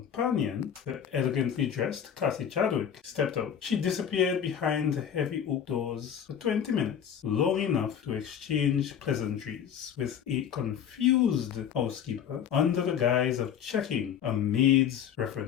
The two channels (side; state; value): right; quieter; 8.7 dB